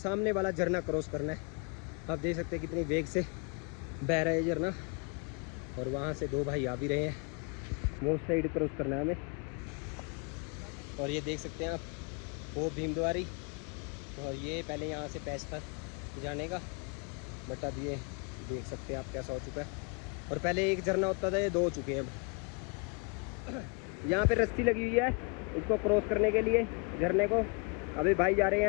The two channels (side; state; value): right; quieter; 34.0 dB